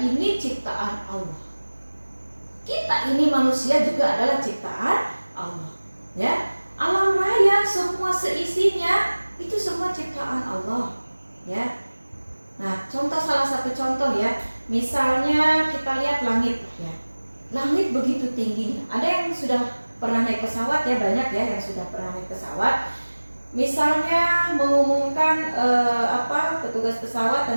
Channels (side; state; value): both; inverted; correlation -1.00